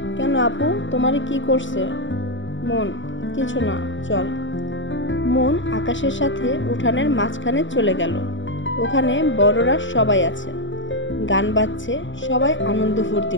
কেন আপু, তোমার কি করছে? মন, কিছু না, চল। মন আকাশের সাথে উঠানের মাঝখানে চলে গেল। ওখানে বড়রা সবাই আছে, গান বাজছে, সবাই আনন্দ ফুর্তি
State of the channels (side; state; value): right; late; 0.55 ms